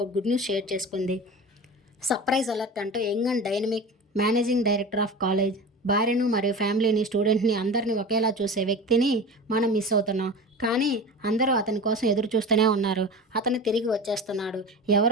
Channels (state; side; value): normal; both; correlation 0.31